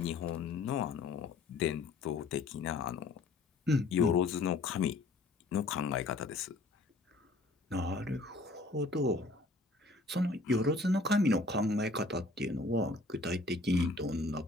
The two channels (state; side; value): quieter; right; 3.1 dB